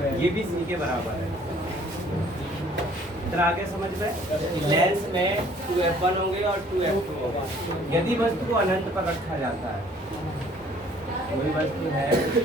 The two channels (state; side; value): normal; both; correlation 0.57